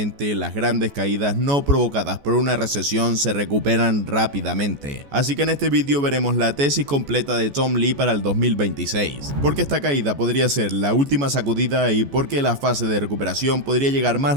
las grandes caídas no provocadas por una recesión se recuperan rápidamente. Así que en este vídeo veremos la tesis completa de Tom Lee para el 2026, porque esta caída podría ser la última sacudida y porque la fase de recuperación podría llegar más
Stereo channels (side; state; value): left; late; 14 ms